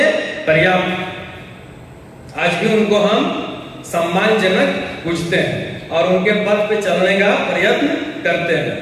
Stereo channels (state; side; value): identical; both; correlation 1.00